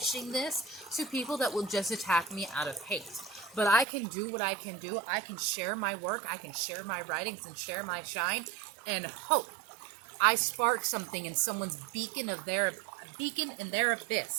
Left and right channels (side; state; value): left; drops out; at 3.9 s